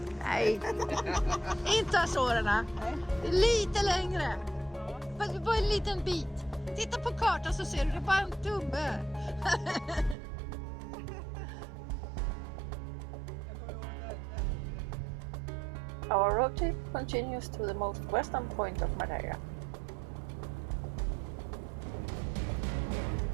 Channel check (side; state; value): left; drops out; at 10.2 s